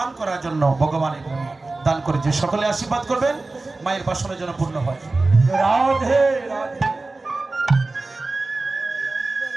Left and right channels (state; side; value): quieter; left; 3.3 dB